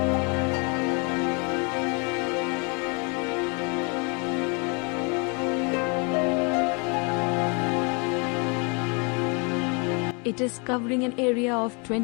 It is covering an area of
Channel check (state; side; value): quieter; right; 33.1 dB